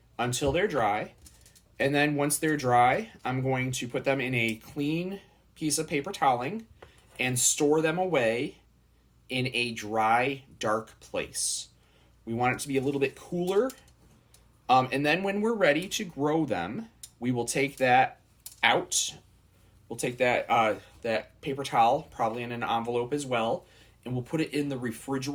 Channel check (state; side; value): identical; both; correlation 1.00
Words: until they're dry. And then once they're dry, I'm going to put them in a clean piece of paper toweling and store them away in a dry, dark place. We want it to be a little bit cooler. And then when we're ready to grow them, we will take that out. We'll take that paper towel, probably in an envelope as well, and we'll put it in the